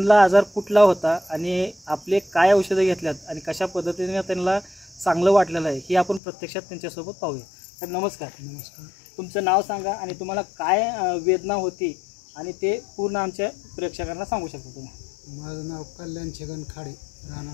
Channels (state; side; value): drops out; right; at 6.2 s